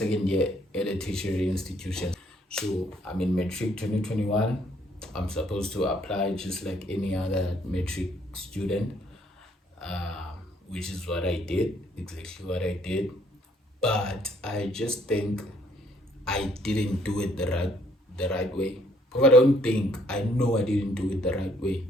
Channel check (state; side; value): normal; both; correlation 0.65